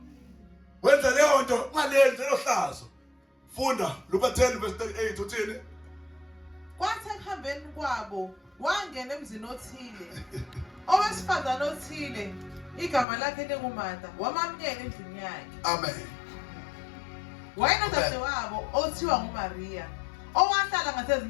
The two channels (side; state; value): right; drops out; at 13.1 s